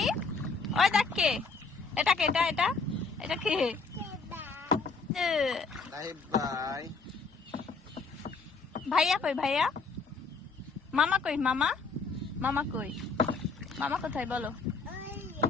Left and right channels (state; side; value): quieter; right; 4.3 dB